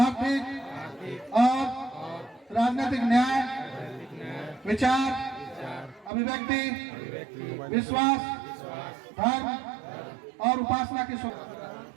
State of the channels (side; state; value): left; drops out; at 6.1 s